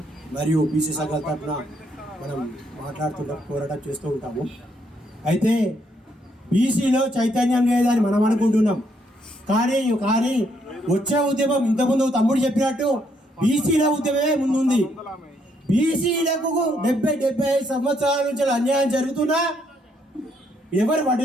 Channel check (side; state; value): both; normal; correlation 0.73